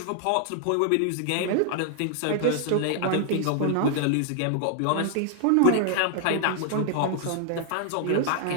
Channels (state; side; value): different; both; correlation 0.00